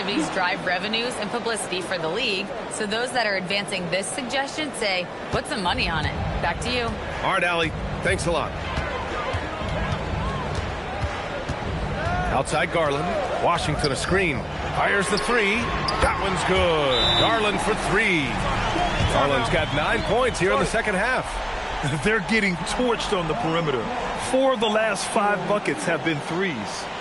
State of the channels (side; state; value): both; identical; correlation 1.00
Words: drive revenues and publicity for the league, so those that are advancing this suggestion say, put some money on it. Back to you. All right, Allie. Thanks a lot. Outside Garland. Washington a screen. Fires the three. That one's good. Garland for three. Garland's got 9 points here in the second half. They're getting torched on the perimeter. 4 of the last 5 buckets have been threes.